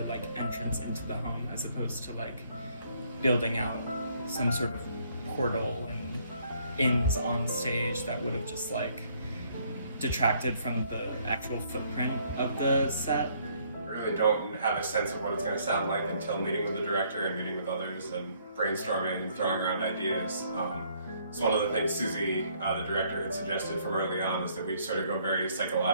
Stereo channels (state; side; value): inverted; both; correlation -0.66